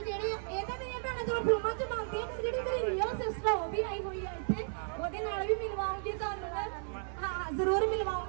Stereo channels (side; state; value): left; silent; 55 dB below the other